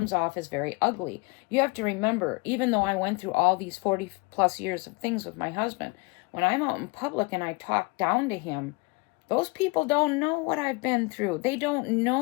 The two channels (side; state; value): right; quieter; 27.0 dB